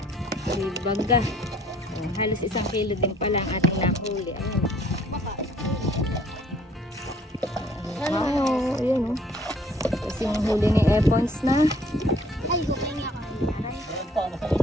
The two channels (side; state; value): both; normal; correlation 0.59